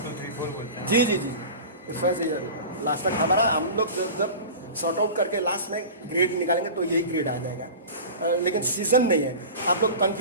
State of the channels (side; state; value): both; inverted; correlation -0.34